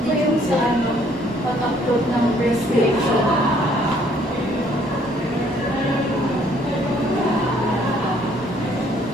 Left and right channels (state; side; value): normal; both; correlation 0.63